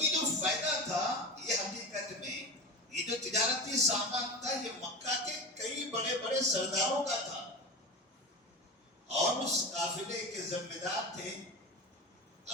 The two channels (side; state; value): both; normal; correlation 0.26